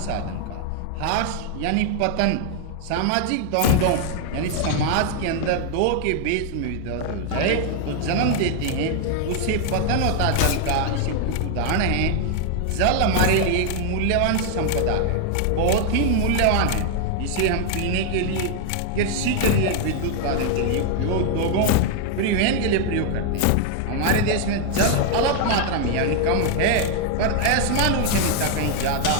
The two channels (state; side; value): different; both; correlation 0.00